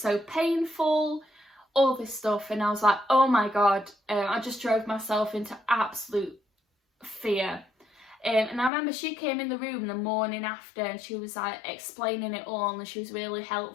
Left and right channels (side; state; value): right; drops out; at 8.7 s